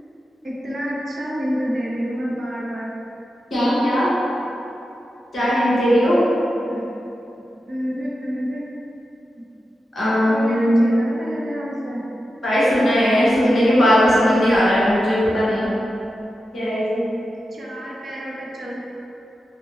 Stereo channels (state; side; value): normal; both; correlation 0.90